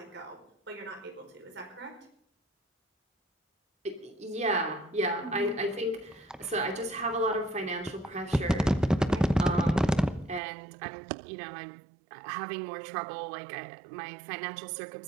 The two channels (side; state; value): left; drops out; at 10.4 s